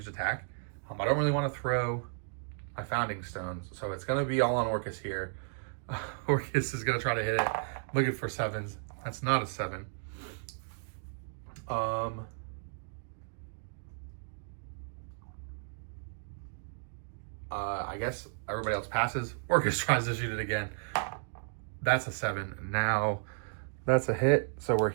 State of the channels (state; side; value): silent; left; digital silence